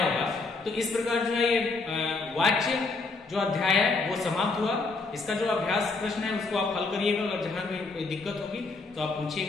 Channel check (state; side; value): quieter; right; 3.8 dB